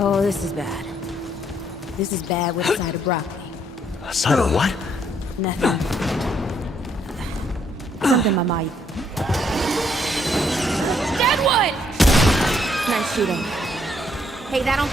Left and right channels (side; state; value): both; normal; correlation 0.70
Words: this is bad. This is bad with a side of broccoli. A side of what? Nothing. Something my mind. Dead one! Nice shooting. Hey, that don't